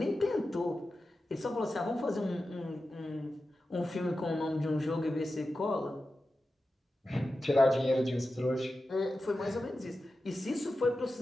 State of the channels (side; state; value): both; normal; correlation 0.92